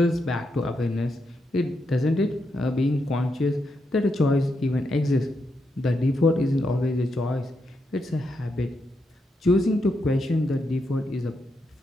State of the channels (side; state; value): both; normal; correlation 0.82